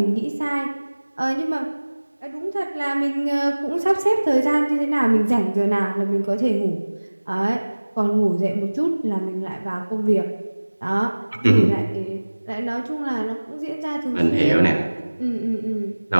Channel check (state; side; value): inverted; both; correlation -1.00